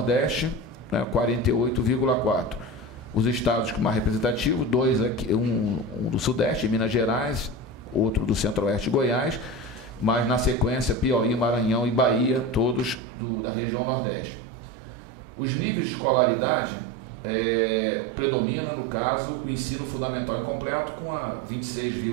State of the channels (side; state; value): left; drops out; at 13.0 s